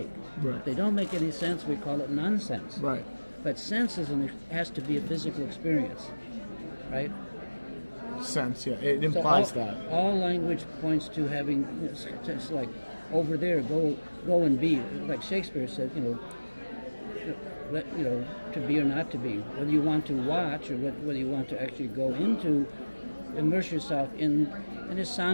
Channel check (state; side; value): inverted; both; correlation -1.00